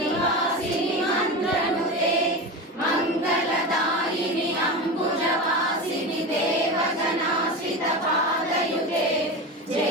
మంత్రనుతే, మంగళదాయిని అంబుజవాసిని దేవజనాశ్రిత పాదయుతే.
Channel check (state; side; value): normal; both; correlation 0.24